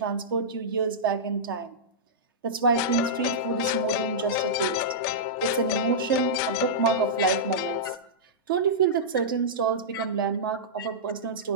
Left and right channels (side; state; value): both; normal; correlation -0.14